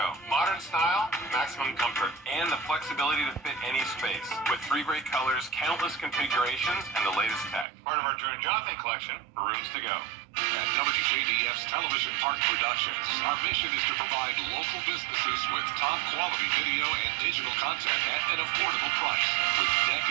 Modern style, maximum comfort, and the flexibility to fit any space. With 3 great colors, countless configurations, and the latest tech. Part of our Drew and Jonathan collection for Rooms to Go. At WJBF's Television Park Productions, our mission is to provide local businesses with top quality video and digital content at an affordable price. With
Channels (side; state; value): left; drops out; at 7.7 s